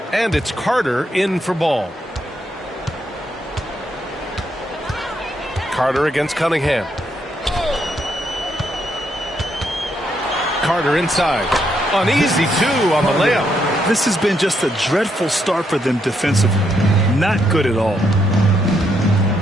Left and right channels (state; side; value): normal; both; correlation 0.77